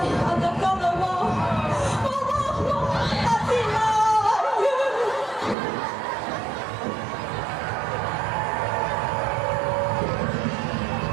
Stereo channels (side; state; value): left; drops out; at 5.6 s